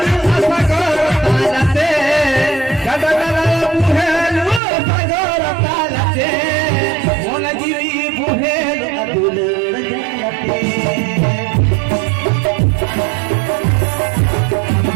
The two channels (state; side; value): drops out; left; at 4.6 s